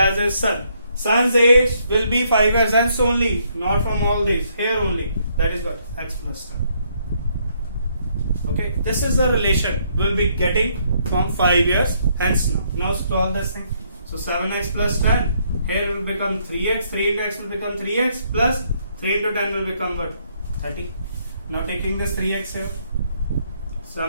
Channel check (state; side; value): inverted; both; correlation -0.71